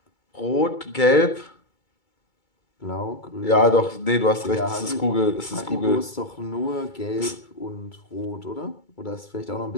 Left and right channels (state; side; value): late; right; 2.3 ms